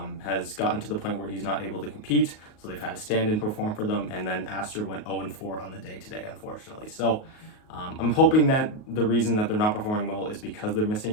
has gotten to the point where he's not able to compete. So they've had a stand-in perform for them, and then Aster went 0-4 on the day today, unfortunately. So I'm hoping that the reason that they're not performing well is because they're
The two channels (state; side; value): late; right; 38 ms